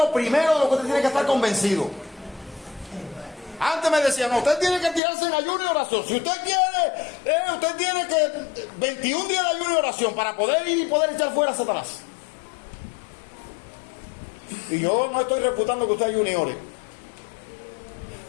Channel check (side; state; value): right; drops out; at 5.0 s